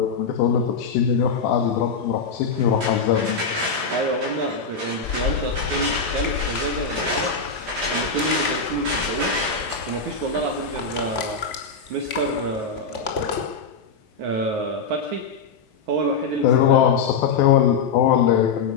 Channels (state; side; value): quieter; right; 5.0 dB